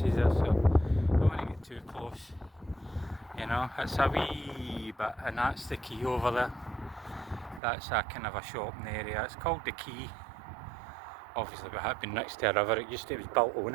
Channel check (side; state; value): left; drops out; at 7.6 s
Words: are, so don't want to get too close. You know, it's a wee bit, and that's the quay over there. That's a kind of a shopping area. It's called the Quay. Obviously, it had been next to a river. It was built on